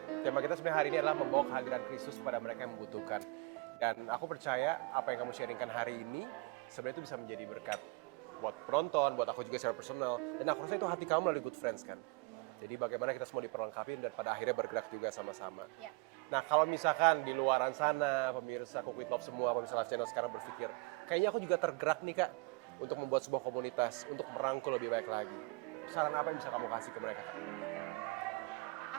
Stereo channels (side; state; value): left; quieter; 27.6 dB